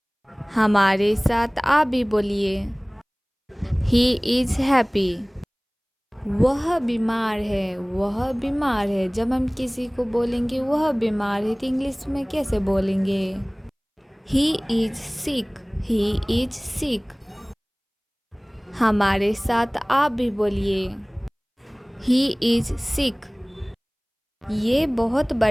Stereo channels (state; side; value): identical; both; correlation 1.00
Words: हमारे साथ आ भी बोलिए, ही इज हैप्पी। वह बीमार है, वह बीमार है। जब हम किसी को बोलेंगे वह बीमार है, तो इंग्लिश में कैसे बोलेंगे? He is sick, he is sick. हमारे साथ आप भी बोलिए, ही इज सिक। ये बहुत